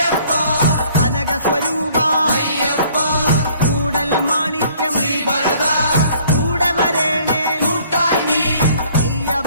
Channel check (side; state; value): both; inverted; correlation -0.58